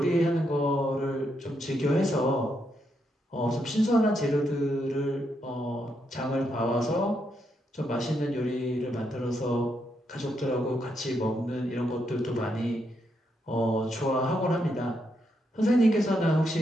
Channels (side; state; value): both; normal; correlation 0.79